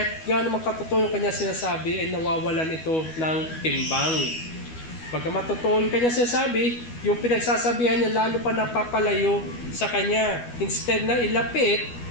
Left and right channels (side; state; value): right; late; 12 ms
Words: gaano makatotoo yung kanya sinasabi, ay nawawalan ito ng timbang. Bagamat totoo yung kanya sinasabi, yung pinagsasabihan niya lalo pa napapalayo sa kanya. Instead na ilapit,